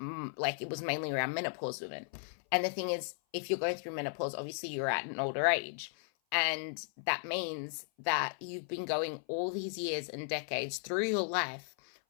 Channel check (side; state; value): right; silent; 54 dB below the other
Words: was mainly around menopause women. And the thing is, if you're going through menopause, obviously you're at an older age. And that means that you've been going all these years and decades through your life